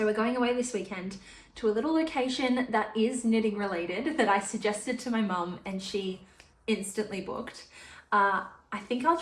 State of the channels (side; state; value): both; identical; correlation 1.00